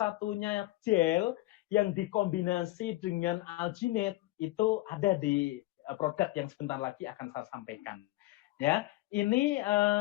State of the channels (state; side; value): quieter; right; 18.6 dB